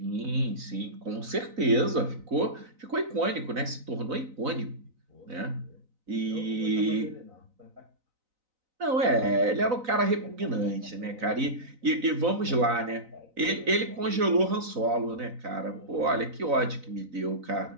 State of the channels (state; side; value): late; left; 3.9 ms